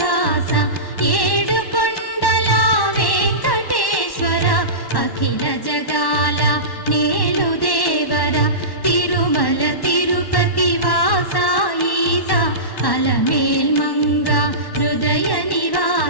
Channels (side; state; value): right; late; 1.1 ms